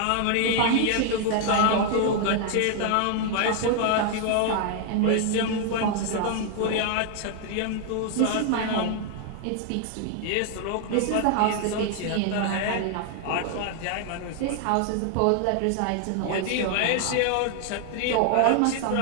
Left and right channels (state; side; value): different; both; correlation 0.00